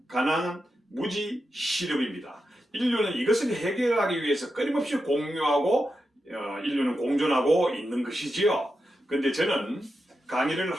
가난, 무지, 실업입니다. 인류는 이것을 해결하기 위해서 끊임없이 공유하고 인류는 공존하고 있는 것이지요. 그런데 저는 강의를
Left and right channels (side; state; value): both; normal; correlation 0.88